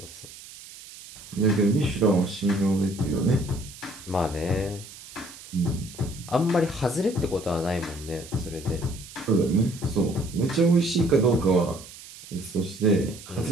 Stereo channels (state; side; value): noise; right; hiss, 17 dB below the sound